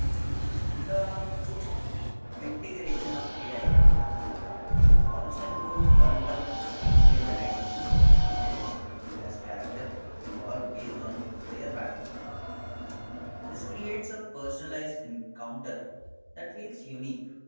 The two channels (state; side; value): inverted; both; correlation -1.00